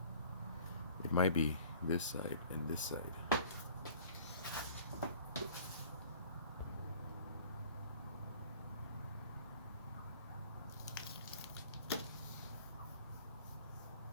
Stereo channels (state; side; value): inverted; both; correlation -0.50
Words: it might be this side and this side.